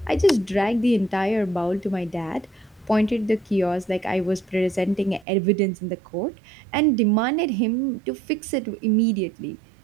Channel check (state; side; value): drops out; left; at 5.2 s